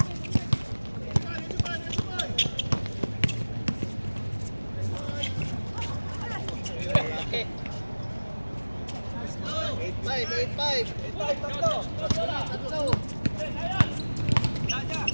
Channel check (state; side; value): inverted; both; correlation -1.00